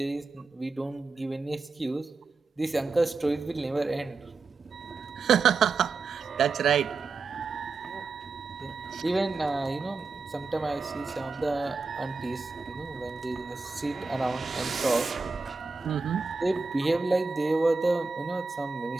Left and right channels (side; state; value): left; quieter; 4.1 dB